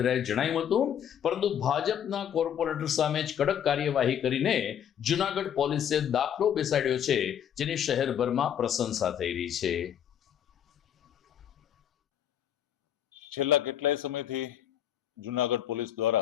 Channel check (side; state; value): right; quieter; 9.5 dB